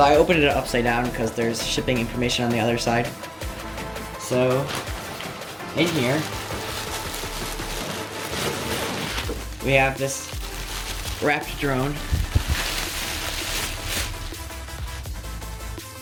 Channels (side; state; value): both; identical; correlation 1.00